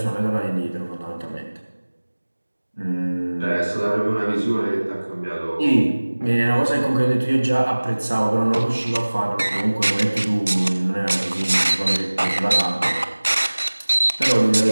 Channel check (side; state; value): both; inverted; correlation -1.00